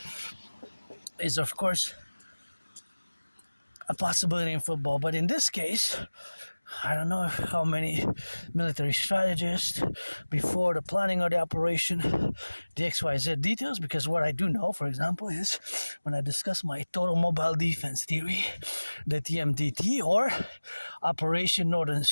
is of course a possibility in football, but in this case, I don't know how many military strategists before the planning of the operation, the XYZ details, because what I do know, for example, is when I discuss my total mobile defense theory, the TMDT, or Operation Northern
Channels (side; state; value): both; inverted; correlation -1.00